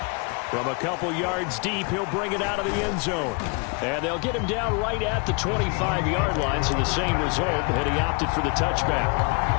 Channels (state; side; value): quieter; right; 33.1 dB